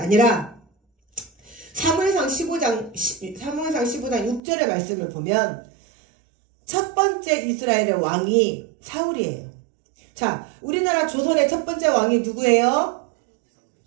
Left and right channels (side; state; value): left; drops out; at 4.4 s